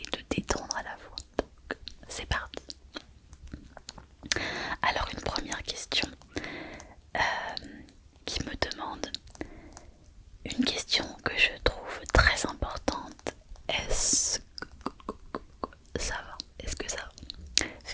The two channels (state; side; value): identical; both; correlation 1.00